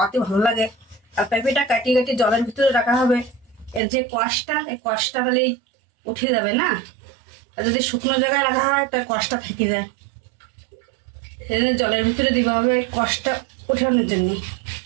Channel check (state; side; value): drops out; left; at 3.8 s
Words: ভালো লাগে। আর পেঁপেটা কাটিয়ে কাটিয়ে জলের ভিতরে রাখা হবে। এর যে কষটা, এই কষটা তাহলেই উঠে যাবে না। আর যদি শুকনো জায়গায় রাখা হয় তার কষটা থেকে যায়। সেজন্য জলের ভিতরে দিতে হবে কষটা ওঠানোর জন্য।